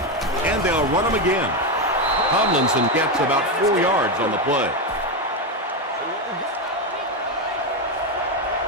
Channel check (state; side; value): normal; both; correlation 0.09